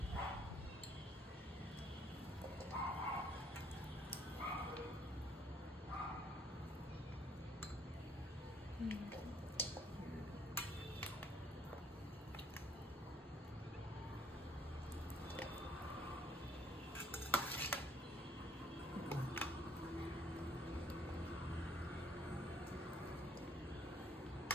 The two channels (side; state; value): both; normal; correlation 0.63